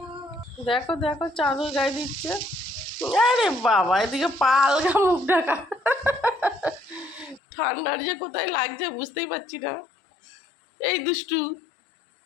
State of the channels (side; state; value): right; drops out; at 7.4 s